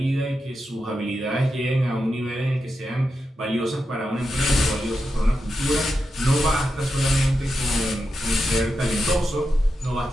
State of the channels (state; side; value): normal; both; correlation 0.88